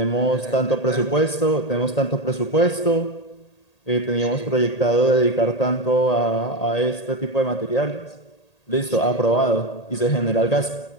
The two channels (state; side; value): late; right; 1.8 ms